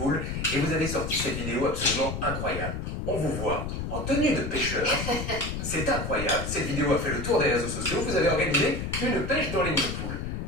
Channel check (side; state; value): left; noise; rumble, 4 dB below the sound